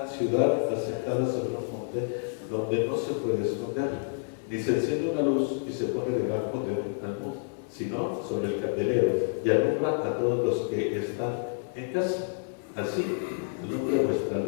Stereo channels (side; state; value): right; silent; digital silence